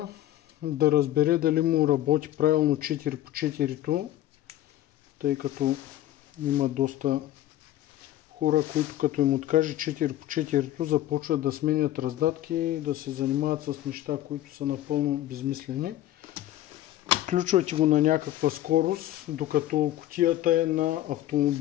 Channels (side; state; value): right; quieter; 13.6 dB